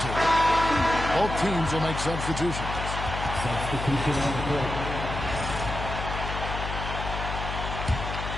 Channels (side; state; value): left; noise; hum, 5 dB below the sound